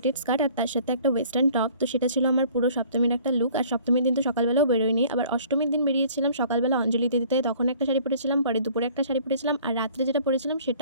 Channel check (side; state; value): both; inverted; correlation -0.53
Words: স্কার্ট, আর তার সাথে একটা ওয়েস্টার্ন টপ। তো সেটা ছিল আমার পুরো সপ্তমীর একটা লুক। আর সপ্তমীর দিন তো সকালবেলাও বেরোয়নি, আবার অষ্টমীর দিন বেরিয়েছিলাম সকালবেলা অঞ্জলি দিতে, তখন একটা শাড়ি পরেছিলাম, পরে দুপুরে একটা শাড়ি পরেছিলাম, আর রাত্রে যেটা পরেছিলাম